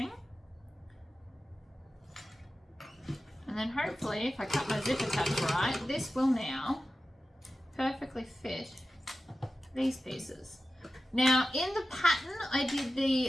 And then hopefully if I cut my zipper tabs right, this will now perfectly fit these pieces. Now in the pattern I did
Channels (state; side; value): normal; both; correlation 0.94